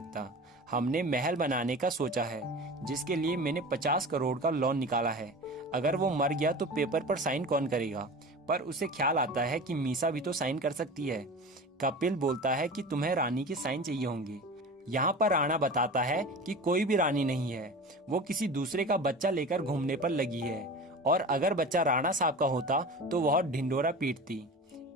हमने महल बनाने का सोचा है, जिसके लिए मैंने 50 करोड़ का लोन निकाला है। अगर वो मर गया तो पेपर पर साइन कौन करेगा? पर उसे ख्याल आता है कि मीसा भी तो साइन कर सकती है। कपिल बोलता है कि तुम्हें रानी के साइन चाहिए होंगे। यहाँ पर राणा बताता है कि कोई भी रानी नहीं है, वो किसी दूसरे का बच्चा लेकर घूमने पर लगी है, और अगर बच्चा राणा साहब का होता तो वह ढिंडोरा पीटती।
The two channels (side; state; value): both; normal; correlation 0.34